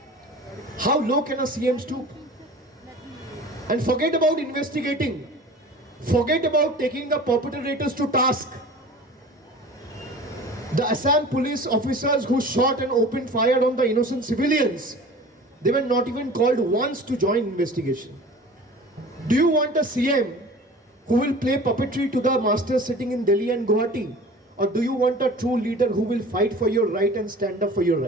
How low can a CM stoop? And forget about investigating. Forget about taking the perpetrators to task. The Assam police officers who shot and opened fire on the innocent civilians, they were not even called once to join investigation. Do you want a CM who will play puppetry to the masters sitting in Delhi and Guwahati? Or do you want a true leader who will fight for your right and stand up for your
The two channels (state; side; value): normal; both; correlation 0.41